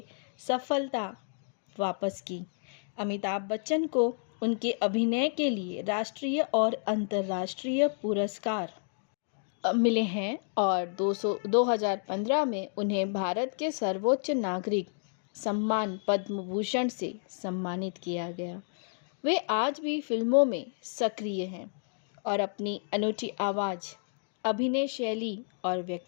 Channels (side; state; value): right; silent; digital silence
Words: सफलता वापस की। अमिताभ बच्चन को उनके अभिनय के लिए राष्ट्रीय और अंतर्राष्ट्रीय पुरस्कार मिले हैं और 2015 में उन्हें भारत के सर्वोच्च नागरिक सम्मान पद्म भूषण से सम्मानित किया गया। वे आज भी फिल्मों में सक्रिय हैं और अपनी अनूठी आवाज़, अभिनय शैली और